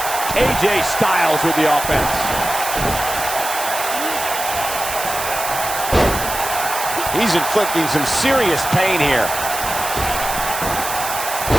AJ Styles with the offense. He's inflicting some serious pain here.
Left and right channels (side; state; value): right; noise; hiss, 6 dB below the sound